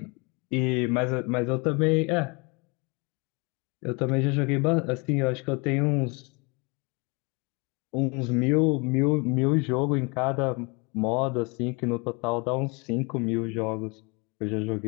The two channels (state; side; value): quieter; right; 29.9 dB